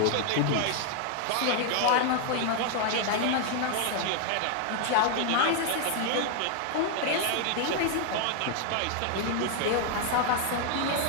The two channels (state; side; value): different; both; correlation 0.00